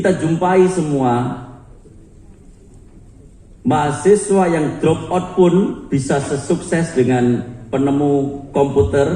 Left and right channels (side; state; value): both; identical; correlation 1.00